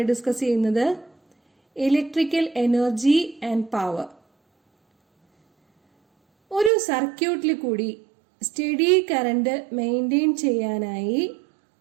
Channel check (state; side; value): drops out; left; at 6.7 s